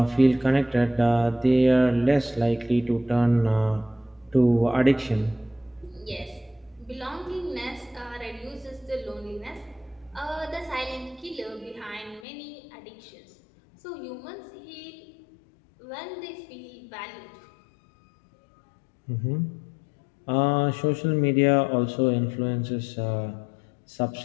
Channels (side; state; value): right; drops out; at 12.2 s